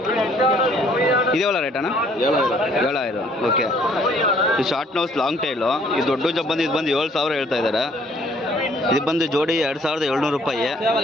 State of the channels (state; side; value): normal; both; correlation 0.61